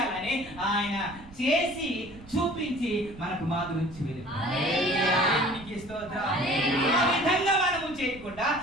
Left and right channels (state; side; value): noise; right; rumble, 20 dB below the sound